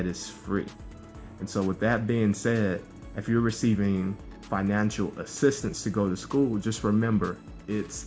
is free. And so with that being said, if you're receiving financial assistance to go to school, just remember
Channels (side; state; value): both; identical; correlation 1.00